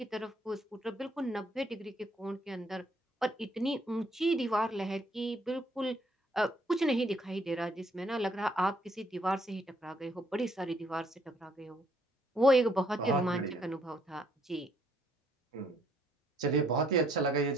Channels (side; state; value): both; normal; correlation 0.68